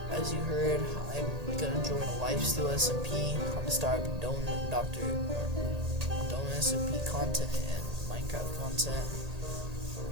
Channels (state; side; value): late; left; 1.8 ms